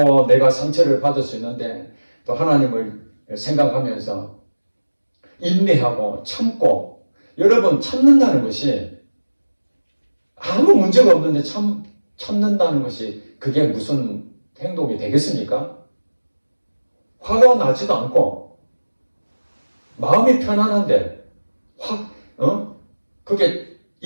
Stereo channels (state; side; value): inverted; both; correlation -1.00